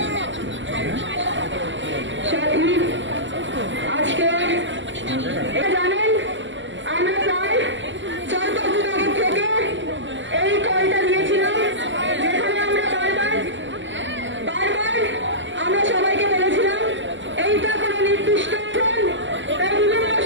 আজকে জানেন আমরা প্রায় 4-5 দিন আগে থেকে এই কলটা দিয়েছিলাম, যেখানে আমরা বারবার আমরা সবাইকে বলেছিলাম এইটা কোনো নির্দিষ্ট বিভিন্ন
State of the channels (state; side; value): late; left; 0.54 ms